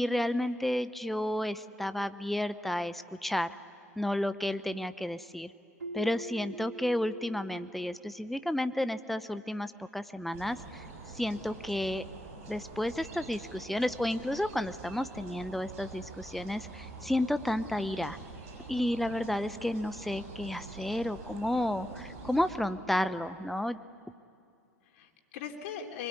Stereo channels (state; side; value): normal; both; correlation 0.90